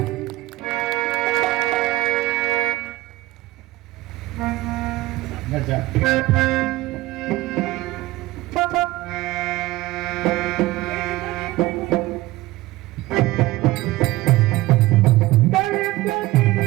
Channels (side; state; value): left; quieter; 18.4 dB